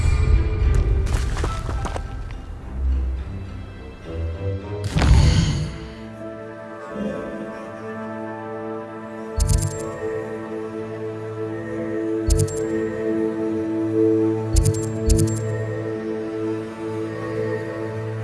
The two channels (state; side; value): identical; both; correlation 1.00